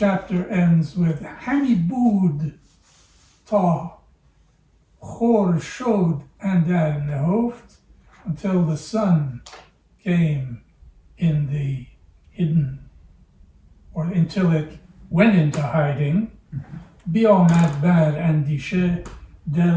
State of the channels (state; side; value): identical; both; correlation 1.00